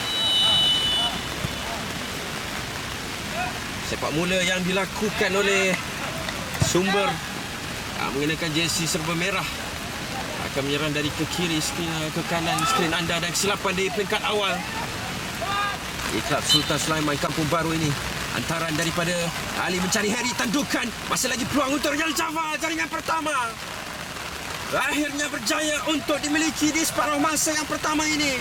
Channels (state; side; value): identical; both; correlation 1.00